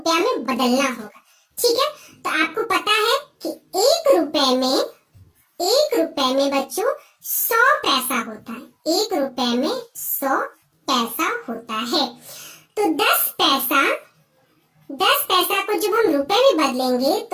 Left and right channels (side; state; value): both; identical; correlation 1.00